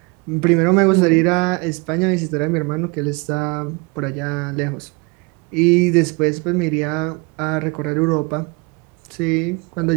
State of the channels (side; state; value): left; quieter; 28.9 dB